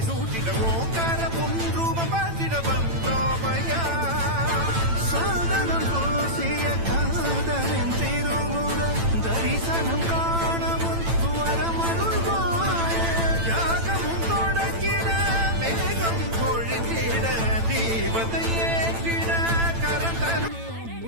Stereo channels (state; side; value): late; left; 8.9 ms